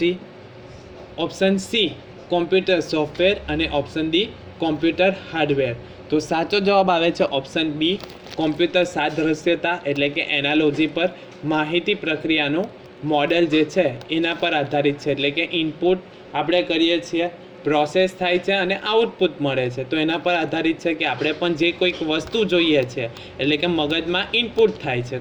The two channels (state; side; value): identical; both; correlation 1.00